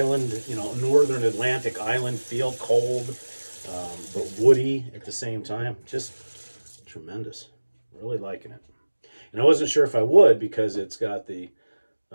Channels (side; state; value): both; inverted; correlation -1.00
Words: you know, northern Atlantic island feel, cold, but woody at the same time. Just tremendous. Really liking it. And I wasn't sure if I would because it's got the